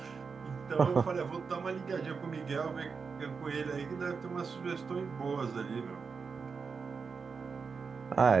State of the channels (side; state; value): left; quieter; 5.3 dB